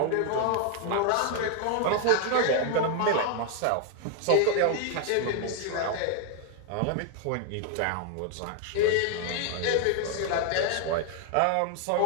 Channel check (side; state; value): both; different; correlation 0.00